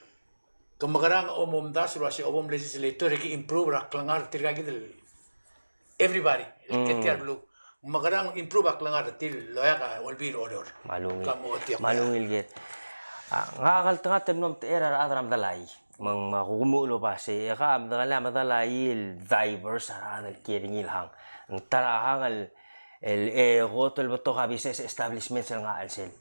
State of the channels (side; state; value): both; inverted; correlation -1.00